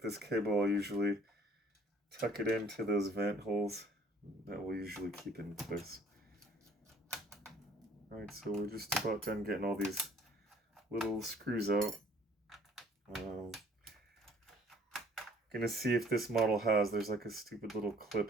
this cable I'll usually tuck it into those vent holes. That will usually keep it in place. Alright, so we're just about done getting all these little screws out. Gonna see if this model there's like a stupid little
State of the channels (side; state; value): both; normal; correlation 0.56